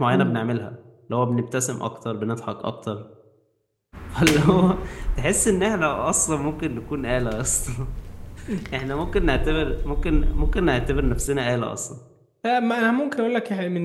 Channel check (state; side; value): identical; both; correlation 1.00